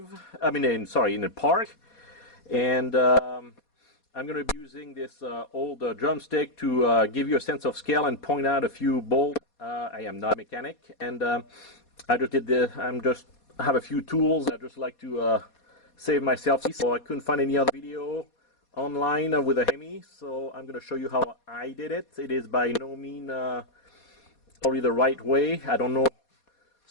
In the park. And I'm going to be using this old drumstick to give you a sense of scale and point out a few bolts. I am not a mechanic, and I have a few tools. I just like to save myself. So I couldn't find any other video online with a Hemi, so I'm going to show you how I did it. It is by no means probably the right way. I don't know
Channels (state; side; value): late; right; 4.2 ms